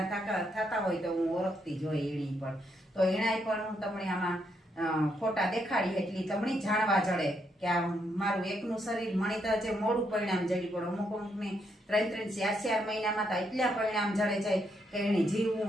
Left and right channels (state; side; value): normal; both; correlation 0.77